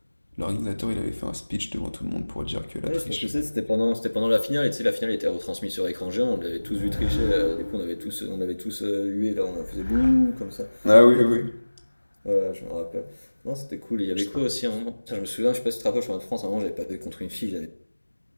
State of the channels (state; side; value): inverted; both; correlation -1.00